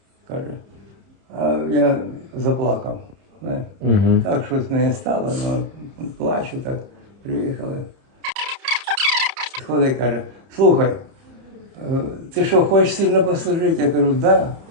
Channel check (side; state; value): left; late; 30 ms